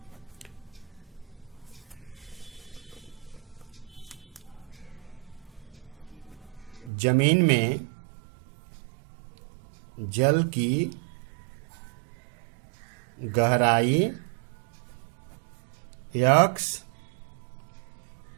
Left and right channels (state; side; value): drops out; left; at 6.9 s